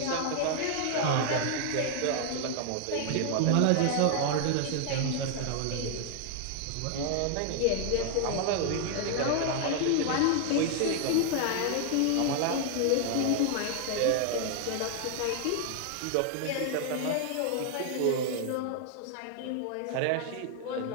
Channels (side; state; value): both; different; correlation 0.00